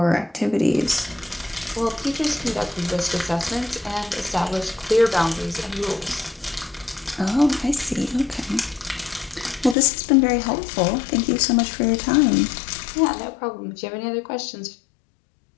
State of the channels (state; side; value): drops out; right; at 9.8 s